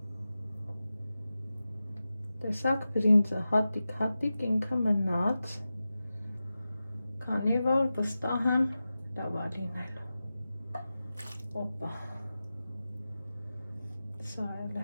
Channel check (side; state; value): both; inverted; correlation -0.94